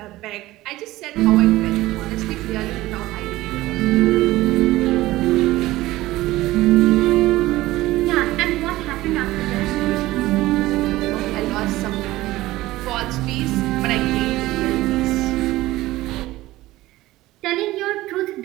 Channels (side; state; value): left; quieter; 17.4 dB